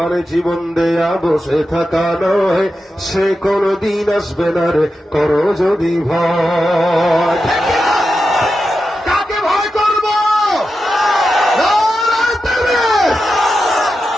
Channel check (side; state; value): both; normal; correlation 0.90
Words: জীবন দেয়া বসে থাকা নয়, সে কোনদিন আসবে না রে করো যদি ভয়। কাকে ভয় করবো?